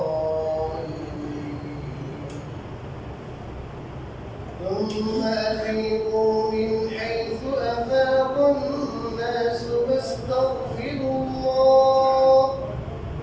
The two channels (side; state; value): both; identical; correlation 1.00